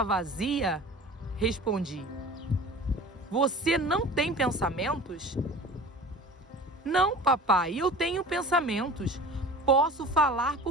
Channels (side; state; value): both; normal; correlation 0.40